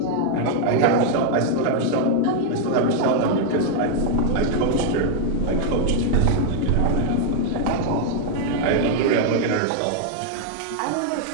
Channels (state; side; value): different; both; correlation 0.00